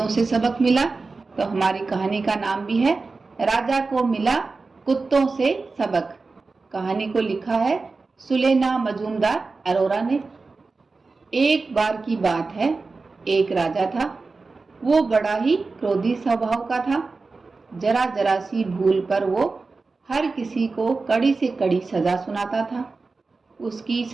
से सबक मिला। तो हमारी कहानी का नाम भी है राजा को मिला कुत्तों से सबक। कहानी को लिखा है सुलेना मजूमदार अरोरा ने। एक बार की बात है, एक राजा था। वो बड़ा ही क्रोधी स्वभाव का था। जरा जरा सी भूल पर वो हर किसी को कड़ी से कड़ी सजा सुनाता था। उसकी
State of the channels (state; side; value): quieter; left; 4.0 dB